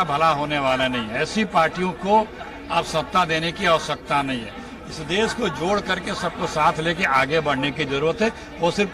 भला होने वाला नहीं है। ऐसी पार्टियों को अब सत्ता देने की आवश्यकता नहीं है। इस देश को जोड़ करके सबको साथ लेके आगे बढ़ने की जरूरत है। वो सिर्फ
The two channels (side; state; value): both; identical; correlation 1.00